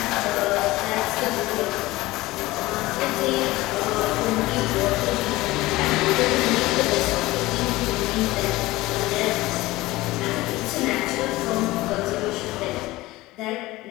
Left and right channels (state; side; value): quieter; right; 18.9 dB